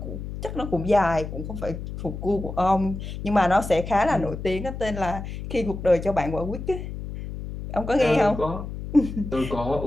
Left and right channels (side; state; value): left; noise; hum, 8 dB below the sound